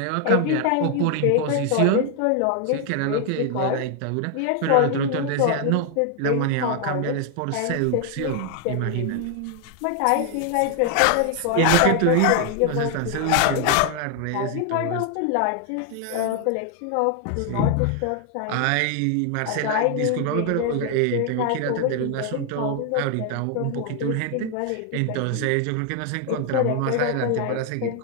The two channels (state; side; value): different; both; correlation 0.00